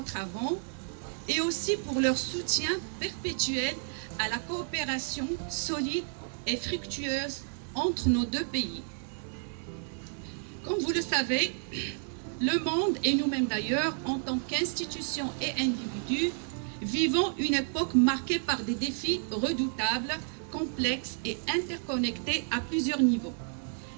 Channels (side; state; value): left; silent; 57 dB below the other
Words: avant, et aussi pour leur soutien perpétuel à la coopération solide et fructueuse entre nos deux pays. Comme vous le savez, le monde, et nous-mêmes d'ailleurs, en tant qu'institutions et individus, vivons une époque marquée par des défis redoutables, complexes et interconnectés à plusieurs niveaux.